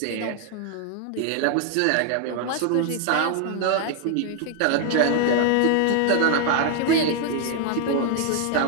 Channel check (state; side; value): different; both; correlation 0.00